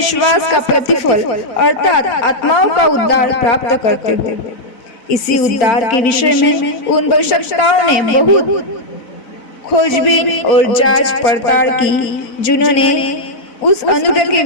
का प्रतिफल अर्थात आत्माओं का उद्धार प्राप्त करते हो। इसी उद्धार के विषय में उन भविष्यवक्ताओं ने बहुत खोजबीन और जांच पड़ताल की, जिन्होंने उस अनुग्रह के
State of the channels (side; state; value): right; late; 4.0 ms